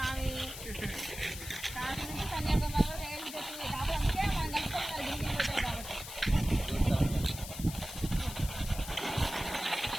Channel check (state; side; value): noise; left; hiss, 10 dB below the sound